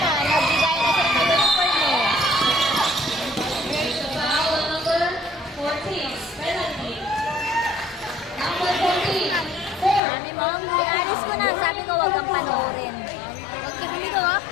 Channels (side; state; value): right; drops out; at 10.0 s